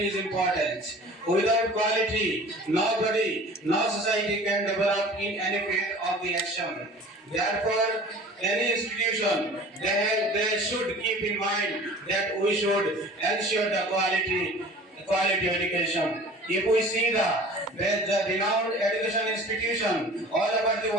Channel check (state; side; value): normal; both; correlation 0.44